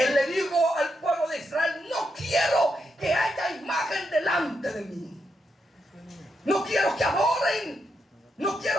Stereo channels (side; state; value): both; normal; correlation 0.83